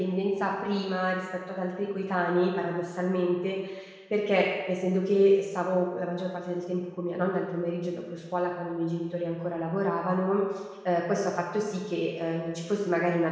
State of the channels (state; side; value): identical; both; correlation 1.00